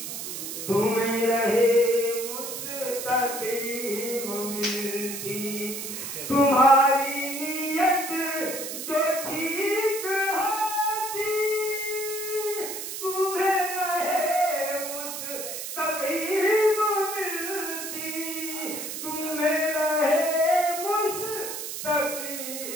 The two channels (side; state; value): right; noise; hiss, 6 dB below the sound